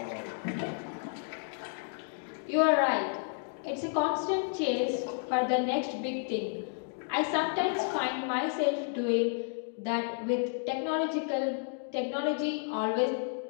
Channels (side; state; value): right; silent; 57 dB below the other